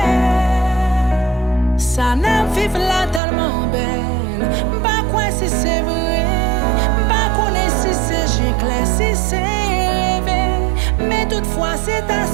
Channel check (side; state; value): left; drops out; at 3.2 s